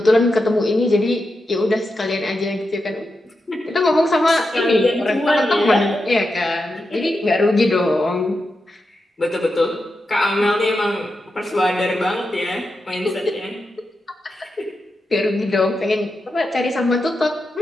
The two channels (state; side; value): normal; both; correlation 0.88